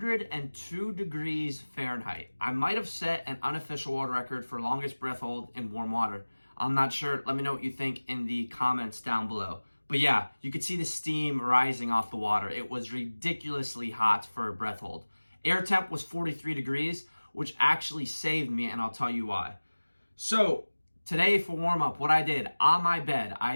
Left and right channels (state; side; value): inverted; both; correlation -1.00